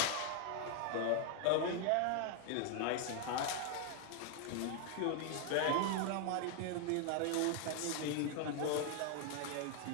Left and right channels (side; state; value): both; different; correlation 0.00